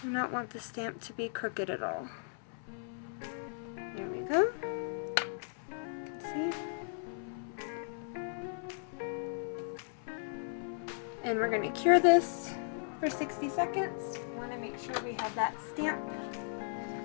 Do not want the stamp to be crooked at all. There we go. You can see. And we're going to cure this for 60 seconds. We want to make sure we have that stamp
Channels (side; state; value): right; silent; 54 dB below the other